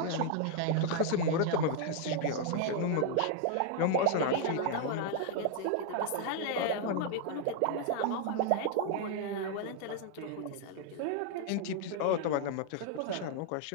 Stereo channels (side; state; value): both; different; correlation 0.00